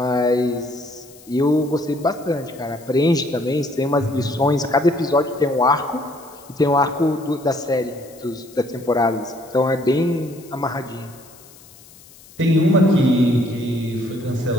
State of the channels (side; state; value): left; noise; hiss, 23 dB below the sound